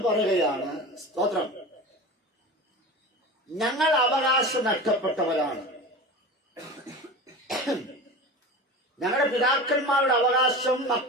പറയുകയാണ്, സ്തോത്രം, ഞങ്ങൾ അവകാശം നഷ്ടപ്പെട്ടവരാണ്. ഞങ്ങളുടെ പിതാക്കന്മാരുടെ അവകാശം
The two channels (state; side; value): normal; both; correlation 0.31